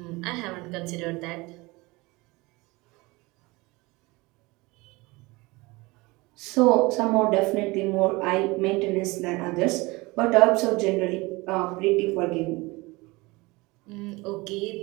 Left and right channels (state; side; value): quieter; left; 23.3 dB